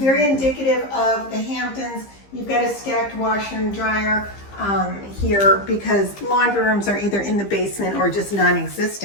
indicative of the Hamptons, you've got a stacked washer and dryer here because laundry rooms are either in the basement or just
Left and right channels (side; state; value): right; late; 15 ms